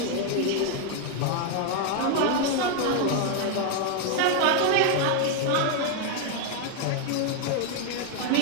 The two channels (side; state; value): both; different; correlation 0.01